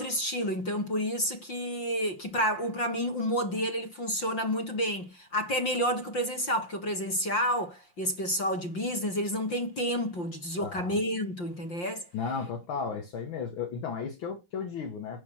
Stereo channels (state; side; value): late; right; 5.7 ms